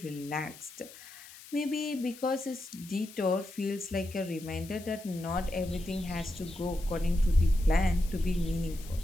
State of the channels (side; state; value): left; noise; hiss, 18 dB below the sound